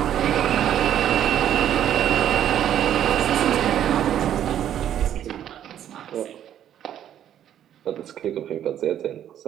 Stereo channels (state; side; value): quieter; left; 10.6 dB